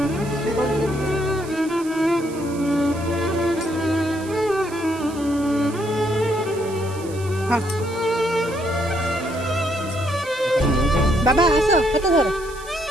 हाँ बाबा आस हाथ धर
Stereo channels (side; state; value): right; noise; hiss, 18 dB below the sound